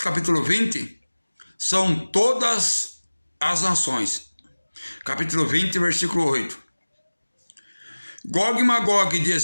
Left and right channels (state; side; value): inverted; both; correlation -1.00